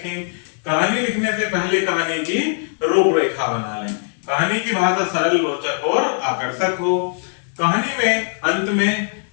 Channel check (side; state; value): right; silent; 56 dB below the other